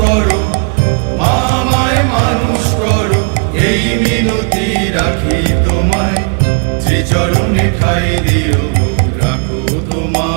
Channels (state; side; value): quieter; left; 34.3 dB